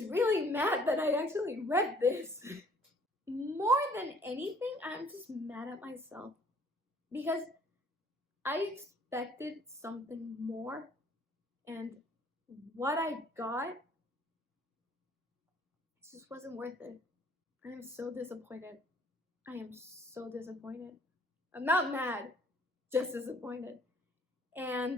really mad that I actually read this. More than anything, I'm just mad at myself because I expected something more, and what I got just wasn't worth it. I am so disappointed. I am so disappointed. I'm not mad, just disappointed.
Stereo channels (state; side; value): normal; both; correlation 0.58